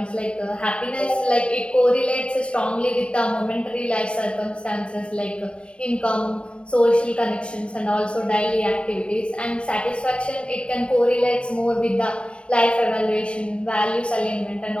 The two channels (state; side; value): late; right; 0.056 ms